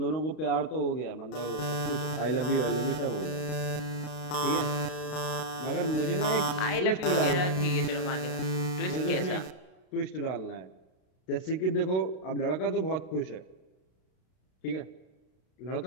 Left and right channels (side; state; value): right; late; 32 ms